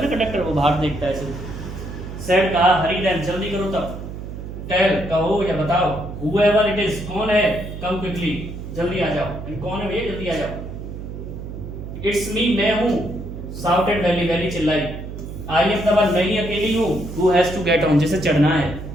ना कंडक्टर, वो बाहर देखता है ऐसे। सेड कहा हरी देन जल्दी करो तब, टेल कहो या बताओ, whoever it is कौन है, कम क्विकली जल्दी आ जाओ, कौन है भैया जल्दी आ जाओ। इट्स मी मैं हूं, शाउटेड वैली वैली चिल्लाई, आई एम द वन मैं ही अकेली हूं, who has to get on जिसे चढ़ना है।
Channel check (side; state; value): right; noise; hum, 9 dB below the sound